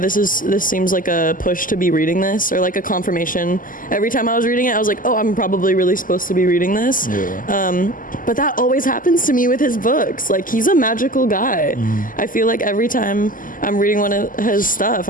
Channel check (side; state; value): right; late; 0.40 ms